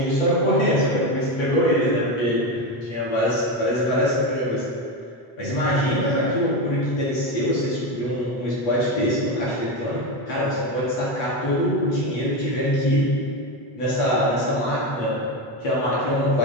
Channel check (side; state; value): right; late; 8.3 ms